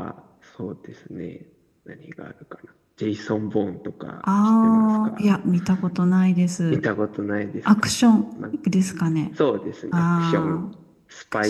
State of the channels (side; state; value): both; identical; correlation 1.00